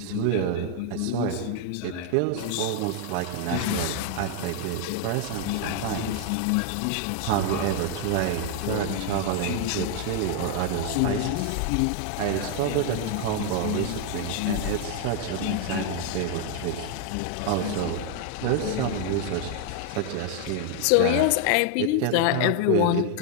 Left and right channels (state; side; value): different; both; correlation 0.00